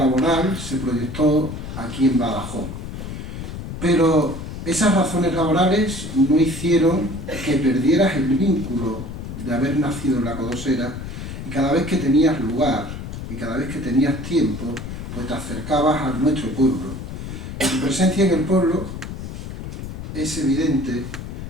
se proyectó aquí en Badajoz. Pero esas razones laborales no hicieron que perdieras el vínculo de haber nacido en La Codosera, y cada vez que tenías lugar y cada vez que tenías tiempo, pues te acercabas a nuestro pueblo. Y tu presencia en el pueblo es evidente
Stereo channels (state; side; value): noise; left; rumble, 8 dB below the sound